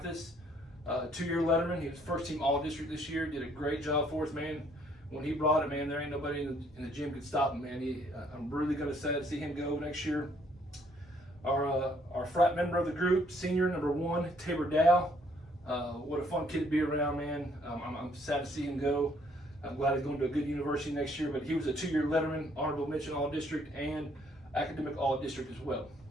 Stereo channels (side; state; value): both; normal; correlation 0.65